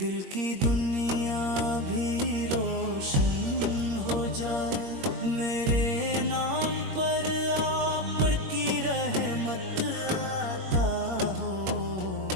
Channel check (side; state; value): left; late; 21 ms